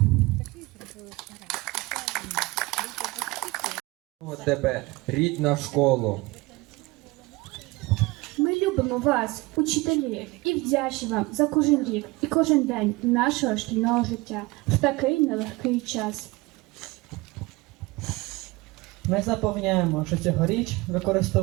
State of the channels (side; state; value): left; quieter; 22.5 dB